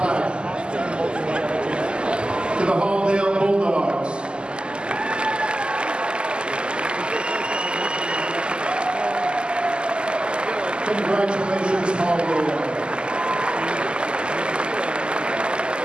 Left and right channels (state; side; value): late; left; 0.049 ms